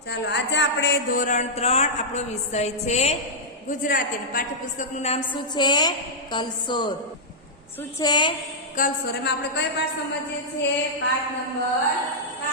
ચાલો આજે આપણે ધોરણ 3 આપણો વિષય છે ગુજરાતી. પાઠ્યપુસ્તકનું નામ શું છે? કલસોર. શું છે? કલસોર. એમાં આપણે કઈ પાઠ સમજીએ છીએ? પાઠ નંબર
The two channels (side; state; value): both; normal; correlation -0.09